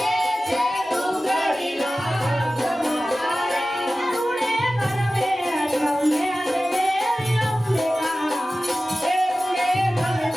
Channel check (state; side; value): normal; both; correlation 0.96